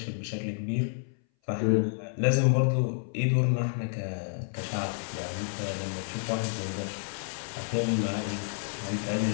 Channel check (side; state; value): right; silent; 58 dB below the other